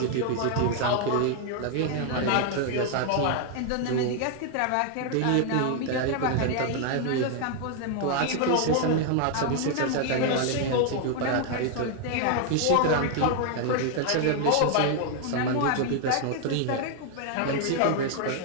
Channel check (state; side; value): different; both; correlation 0.00